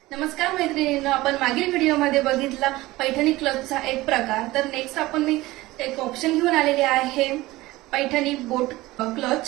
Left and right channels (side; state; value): left; quieter; 18.8 dB